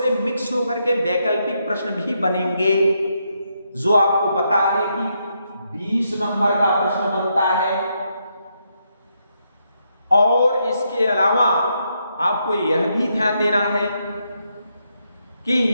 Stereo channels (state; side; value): inverted; both; correlation -0.79